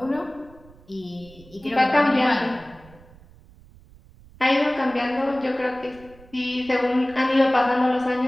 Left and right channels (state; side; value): noise; right; rumble, 24 dB below the sound